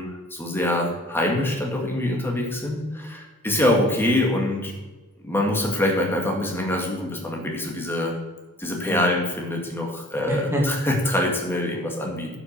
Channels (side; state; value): both; normal; correlation 0.51